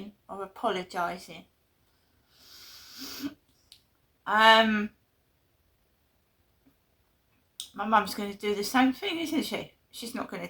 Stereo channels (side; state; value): both; identical; correlation 1.00